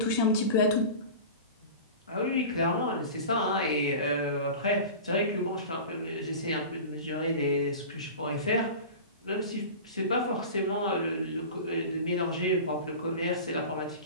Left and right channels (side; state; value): both; inverted; correlation -0.33